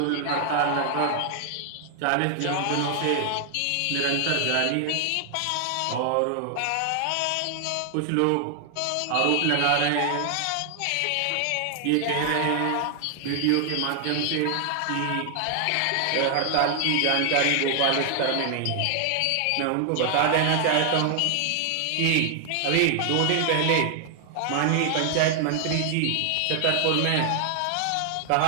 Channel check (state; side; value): different; both; correlation 0.00